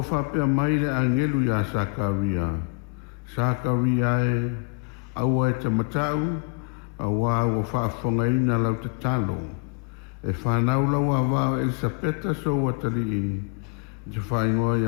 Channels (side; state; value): right; quieter; 35.7 dB